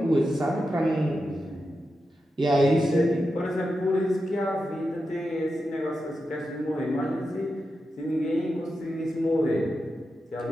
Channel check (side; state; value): both; normal; correlation 0.89